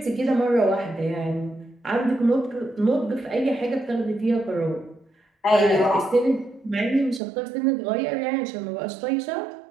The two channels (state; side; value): drops out; left; at 7.2 s